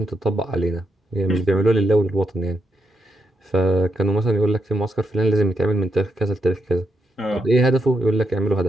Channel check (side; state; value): both; normal; correlation 0.81